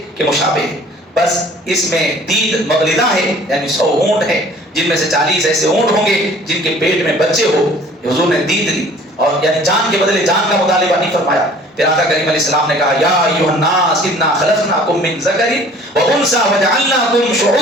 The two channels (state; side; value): normal; both; correlation 0.51